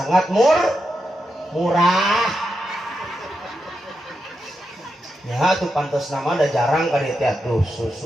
murah. Ya tuh pantas nama ada jarang kali tuh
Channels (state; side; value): normal; both; correlation 0.86